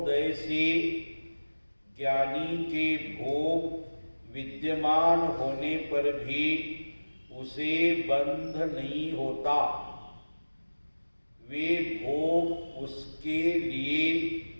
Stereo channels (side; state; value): both; inverted; correlation -1.00